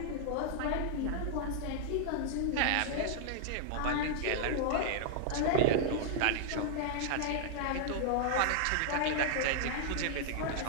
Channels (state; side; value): different; both; correlation -0.01